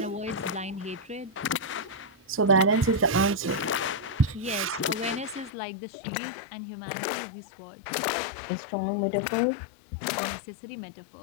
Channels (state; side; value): drops out; right; at 5.5 s